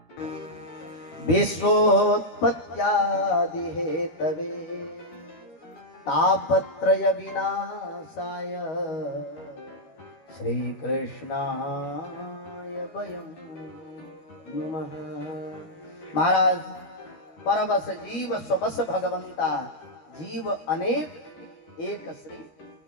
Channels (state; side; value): late; right; 12 ms